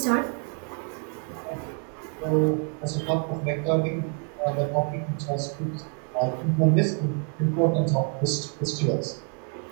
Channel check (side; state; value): left; quieter; 39.7 dB